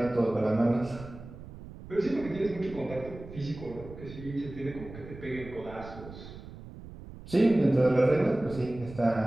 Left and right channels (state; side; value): noise; right; rumble, 14 dB below the sound